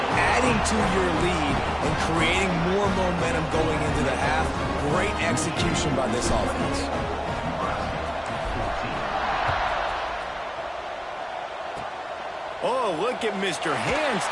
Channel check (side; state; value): both; identical; correlation 1.00